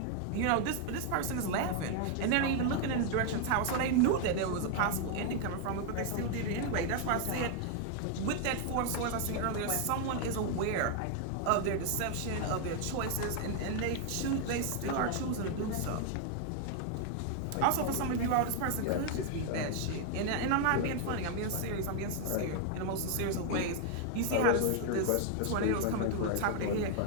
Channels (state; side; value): different; both; correlation 0.00